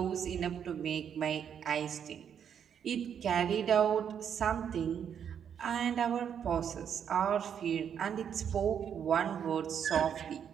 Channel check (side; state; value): left; quieter; 8.3 dB